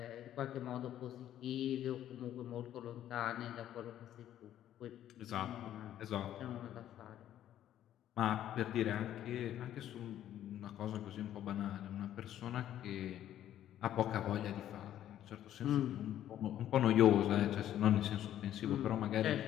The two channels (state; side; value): quieter; right; 11.6 dB